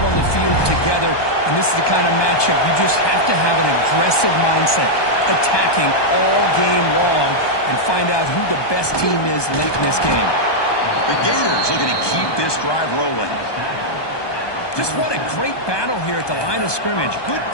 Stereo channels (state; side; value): late; right; 1.2 ms